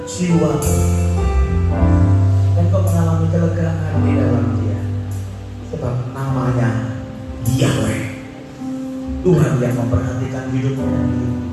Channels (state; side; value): identical; both; correlation 1.00